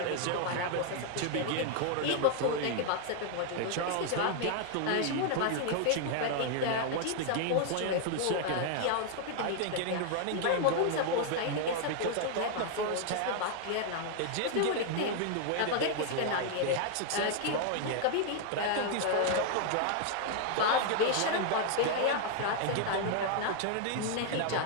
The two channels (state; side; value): different; both; correlation 0.00